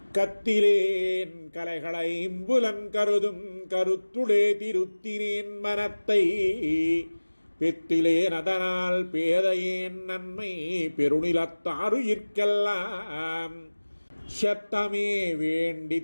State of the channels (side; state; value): both; inverted; correlation -1.00